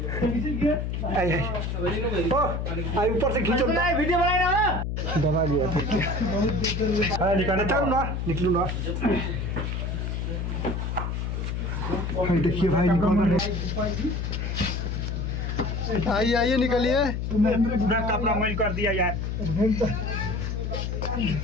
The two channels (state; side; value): noise; left; hum, 2 dB below the sound